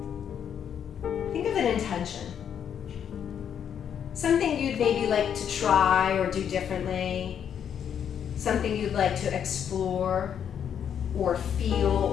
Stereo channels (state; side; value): quieter; right; 8.5 dB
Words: Think of an intention. Something you'd maybe like to try or do differently. Something you'd like to explore or feel